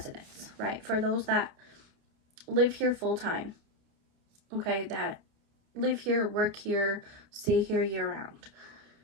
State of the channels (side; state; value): left; late; 29 ms